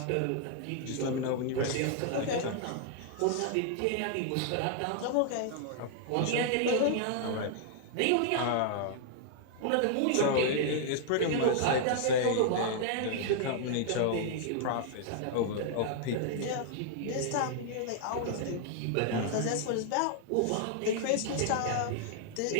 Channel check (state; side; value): different; both; correlation -0.01